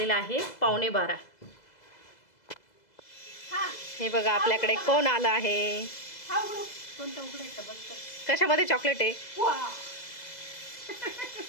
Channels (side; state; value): right; late; 2.0 ms